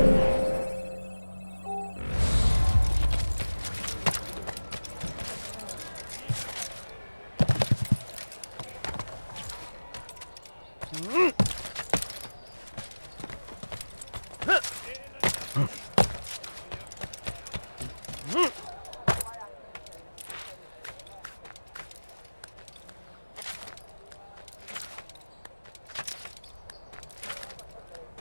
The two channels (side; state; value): both; inverted; correlation -1.00